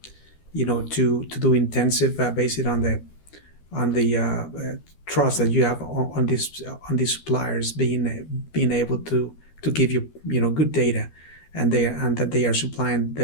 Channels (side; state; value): right; late; 12 ms